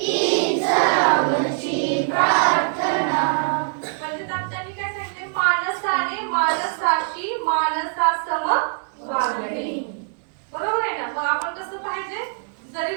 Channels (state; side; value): silent; left; digital silence